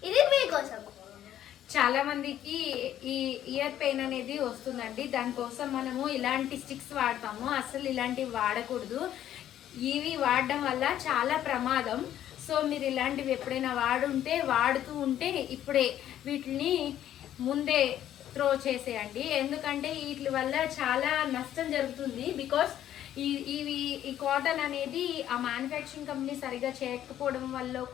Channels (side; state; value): right; quieter; 11.5 dB